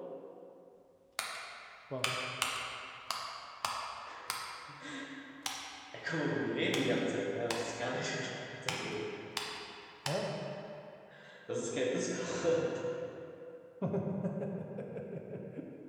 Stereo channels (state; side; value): identical; both; correlation 1.00